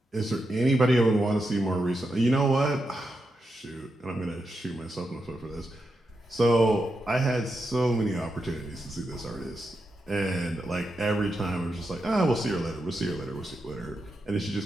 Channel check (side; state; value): both; normal; correlation 0.86